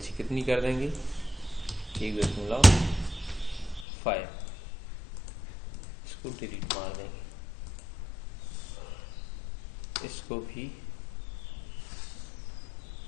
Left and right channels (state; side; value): drops out; right; at 3.9 s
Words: कितनी कर देंगे, 1.5, इसको डिलीट मार देंगे। इसको भी